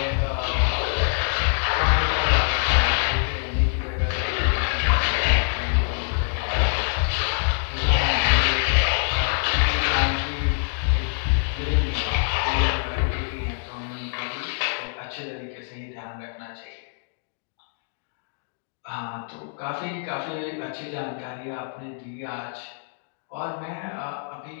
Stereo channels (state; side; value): silent; right; digital silence